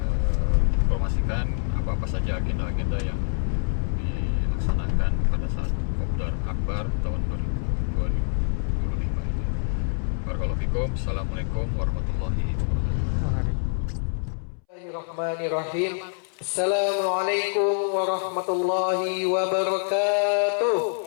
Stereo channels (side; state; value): right; silent; 61 dB below the other